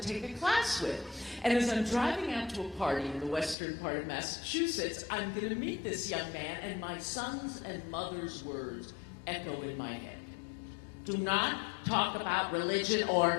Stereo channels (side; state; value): right; drops out; at 3.6 s